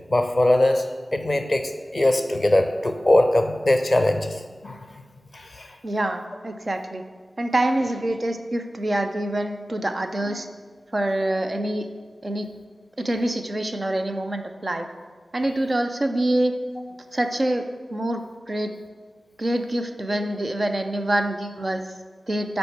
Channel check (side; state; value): both; normal; correlation 0.96